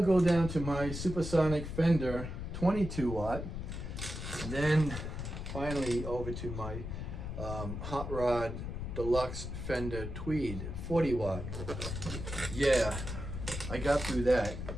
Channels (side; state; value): left; noise; rumble, 6 dB below the sound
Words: go down to my Supersonic Fender 22 watt. Then finally over to my Hot Rod Deluxe Fender Tweed 40 watt. Yeah, I got through that.